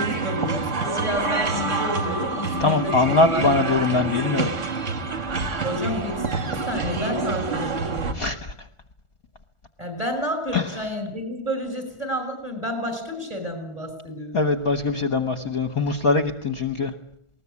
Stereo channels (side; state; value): right; late; 1.4 ms